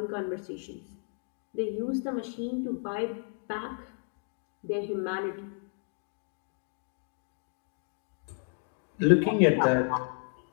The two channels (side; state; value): right; silent; 56 dB below the other